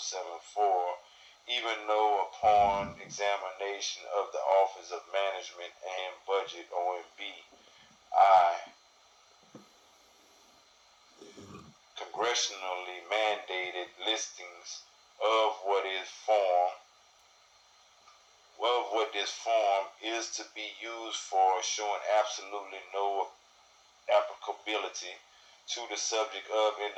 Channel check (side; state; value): both; identical; correlation 1.00